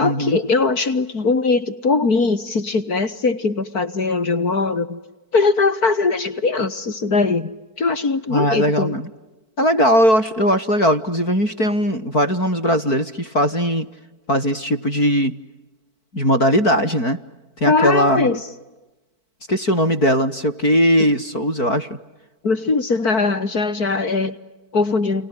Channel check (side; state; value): right; late; 4.5 ms